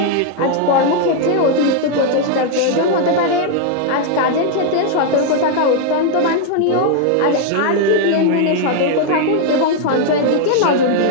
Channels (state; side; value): different; both; correlation 0.00